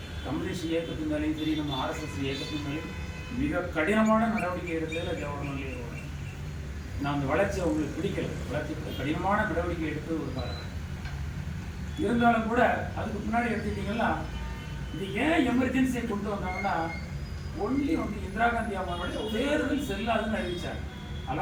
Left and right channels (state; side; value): identical; both; correlation 1.00